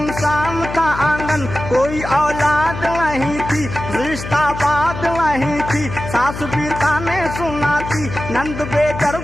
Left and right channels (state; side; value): noise; left; hum, 9 dB below the sound